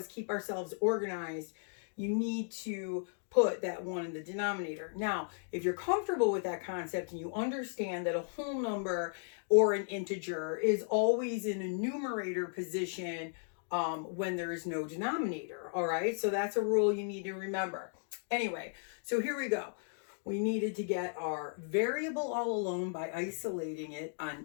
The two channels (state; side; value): silent; right; digital silence